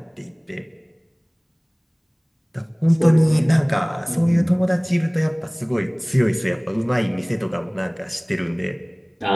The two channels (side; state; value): both; identical; correlation 1.00